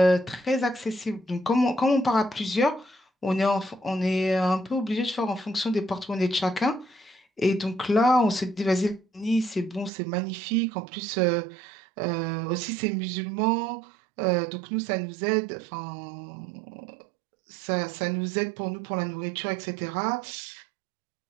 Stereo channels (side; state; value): left; drops out; at 9.9 s